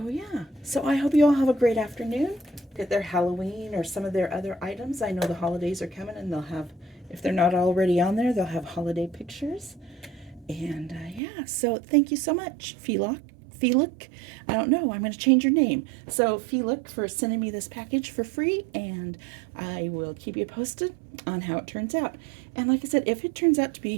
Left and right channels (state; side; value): drops out; left; at 11.2 s